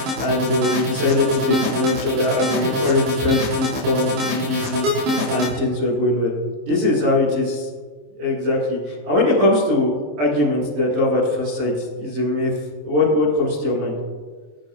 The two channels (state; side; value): late; left; 27 ms